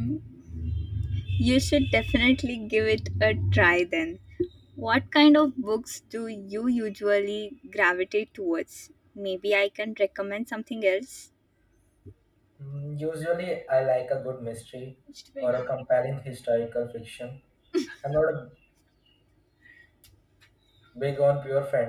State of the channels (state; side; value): identical; both; correlation 1.00